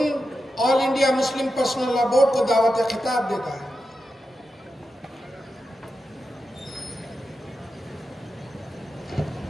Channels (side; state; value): both; normal; correlation 0.89